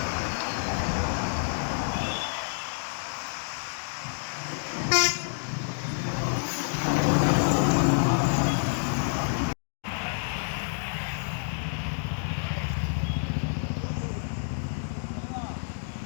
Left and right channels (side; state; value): right; silent; digital silence